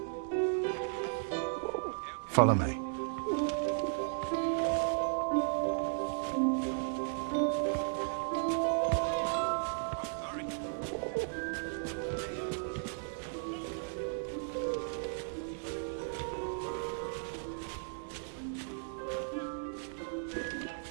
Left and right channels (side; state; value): left; silent; digital silence